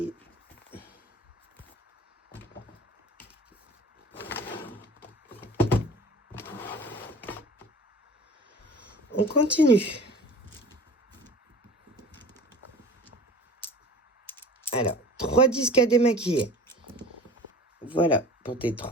On continue. Alors, 3 disques à démaquiller. Voilà pour tes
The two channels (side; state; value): both; normal; correlation 0.41